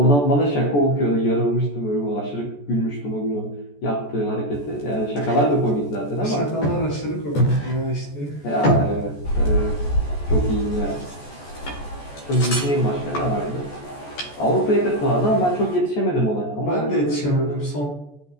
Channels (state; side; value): late; right; 14 ms